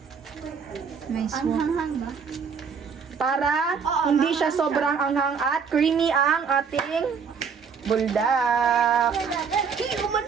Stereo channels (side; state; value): left; quieter; 6.1 dB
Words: may swap. Para hindi siya sobrang anghang at creamy ang ating buldak.